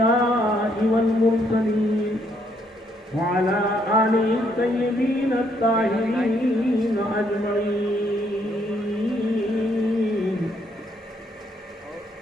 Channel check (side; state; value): both; normal; correlation 0.71